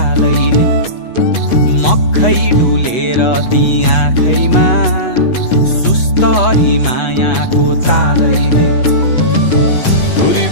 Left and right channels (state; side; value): late; right; 8.2 ms